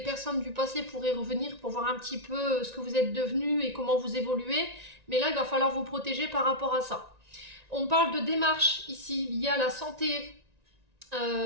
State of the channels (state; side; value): late; left; 1.9 ms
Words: personnes du passé pourraient revenir pour voir un petit peu ce que vous êtes devenu et comment vous évoluez. Mais là, il va falloir vous protéger par rapport à ça. On parle de démarches ici liées à la santé